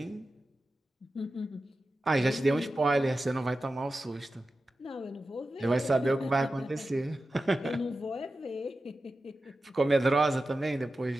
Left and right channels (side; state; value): both; normal; correlation 0.93